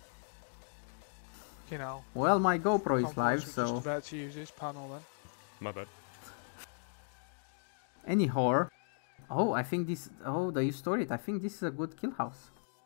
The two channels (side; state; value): right; silent; digital silence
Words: Well, my GoPro is live, so. Just about to use this panel then. My bad. Anyhow, I think this. Oh, do you store it? I think this is a good kill house.